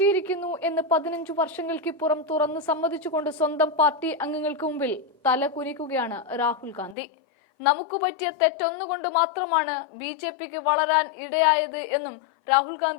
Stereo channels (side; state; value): right; drops out; at 7.0 s